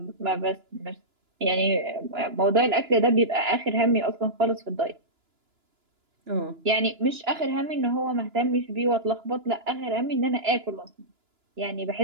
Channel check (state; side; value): late; left; 2.9 ms